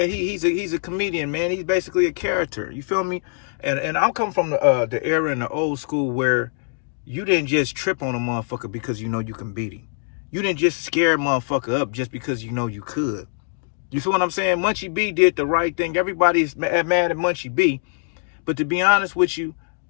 he's a comedian, man. He's basically a character. You feel me? And I'm coming from the era in the old school where you didn't just trip on a motherfucker because you know you can beat him. You didn't just scare a motherfucker up just because you know you could. You feel what I'm saying? Munchie B did the right thing. Everybody's mad at Munchie B. But to be honest with you,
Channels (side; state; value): right; silent; digital silence